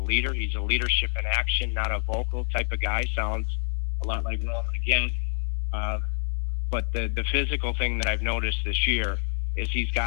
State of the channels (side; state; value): right; silent; 60 dB below the other